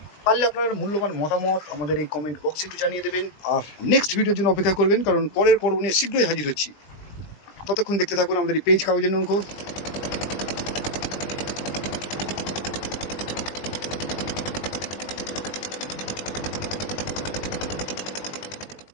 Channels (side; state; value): right; late; 20 ms